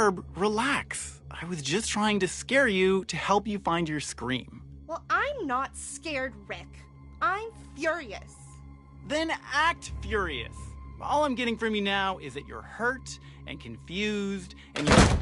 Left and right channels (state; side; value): identical; both; correlation 1.00